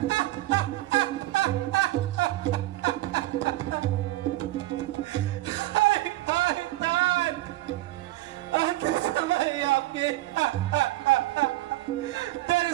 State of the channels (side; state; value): left; quieter; 17.3 dB